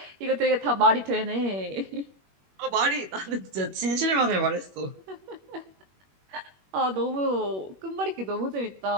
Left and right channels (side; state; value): left; late; 21 ms